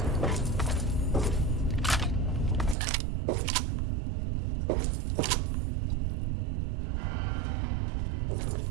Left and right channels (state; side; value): drops out; left; at 2.8 s